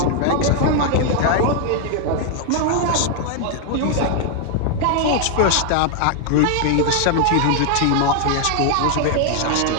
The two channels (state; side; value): different; both; correlation 0.00